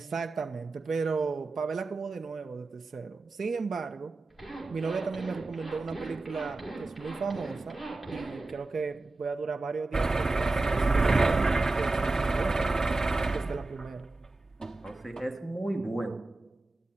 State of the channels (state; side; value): quieter; left; 3.2 dB